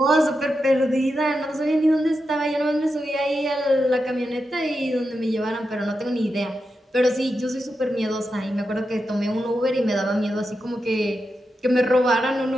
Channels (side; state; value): both; normal; correlation 0.88